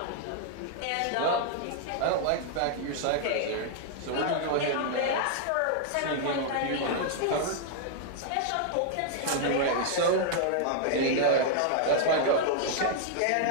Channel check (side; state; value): both; different; correlation -0.01